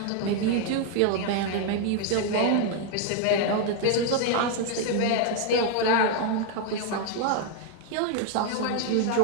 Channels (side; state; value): both; different; correlation 0.01